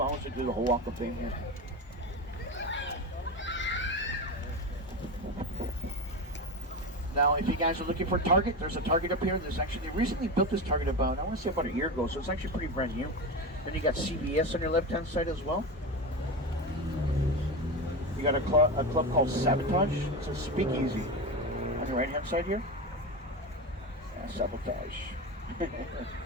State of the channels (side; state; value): both; normal; correlation 0.21